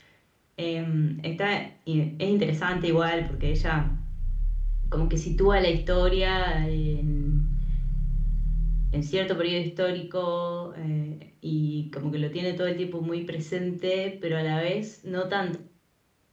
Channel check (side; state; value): both; identical; correlation 1.00